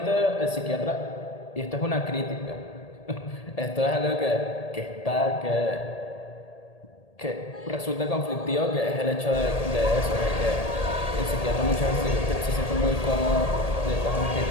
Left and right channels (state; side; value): late; right; 1.8 ms